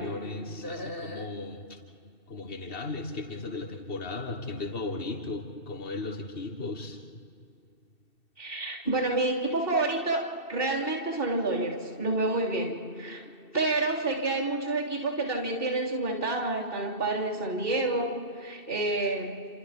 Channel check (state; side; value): late; right; 2.7 ms